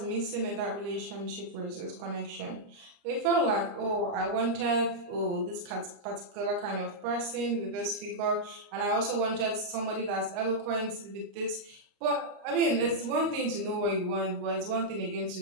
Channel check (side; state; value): left; late; 29 ms